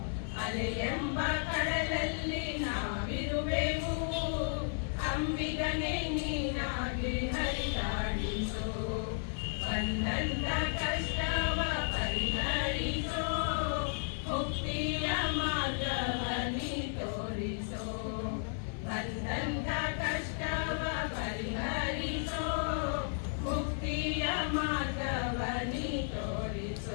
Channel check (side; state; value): right; silent; 55 dB below the other